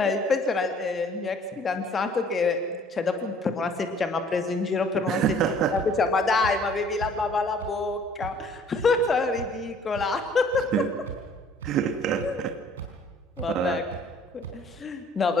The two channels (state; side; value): normal; both; correlation 0.55